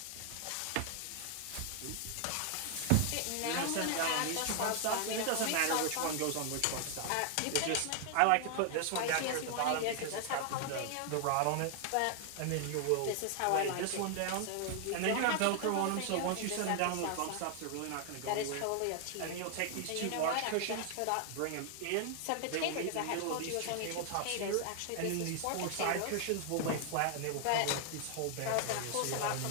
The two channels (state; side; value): different; both; correlation 0.00